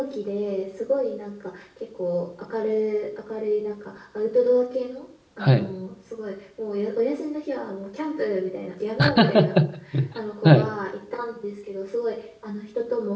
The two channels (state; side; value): identical; both; correlation 1.00